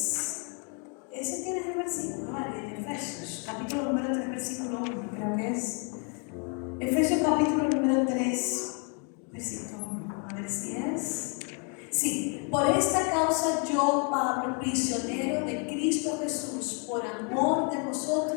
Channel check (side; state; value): right; quieter; 38.4 dB